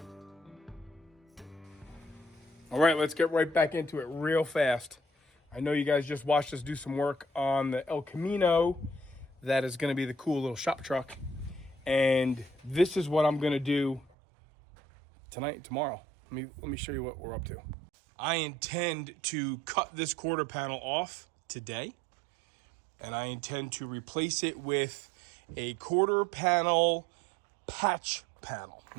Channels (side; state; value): left; drops out; at 14.1 s